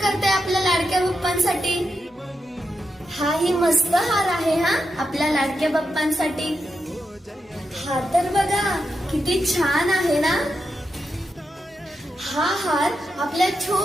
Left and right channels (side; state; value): both; normal; correlation 0.86